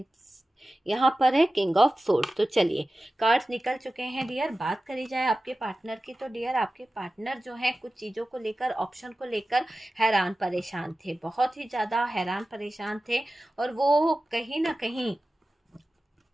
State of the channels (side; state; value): both; normal; correlation 0.95